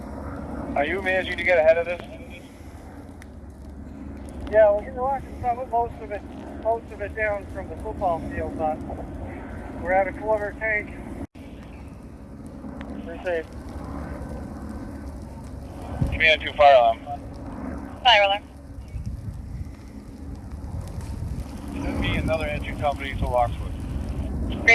Are you managing to get ahead of this? Yeah, we're getting most of it down from the football field, but we're at a quarter tank. Received. Command 2, fire alarm. Fire alarm. Send me another engine company to Lockswood.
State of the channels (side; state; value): both; identical; correlation 1.00